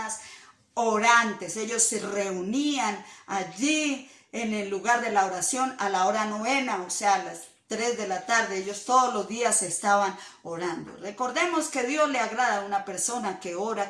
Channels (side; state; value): both; identical; correlation 1.00